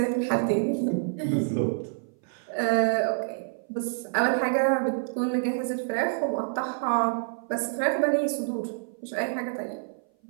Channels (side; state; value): left; silent; 57 dB below the other